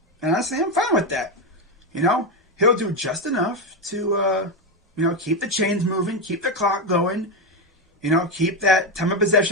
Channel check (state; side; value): normal; both; correlation 0.10